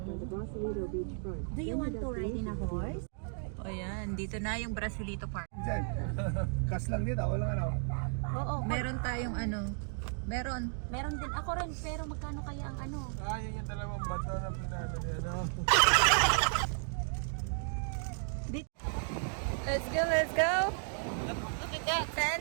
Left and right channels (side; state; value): left; silent; 55 dB below the other